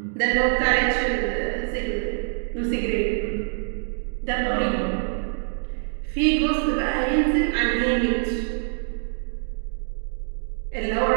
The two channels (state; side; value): silent; left; 62 dB below the other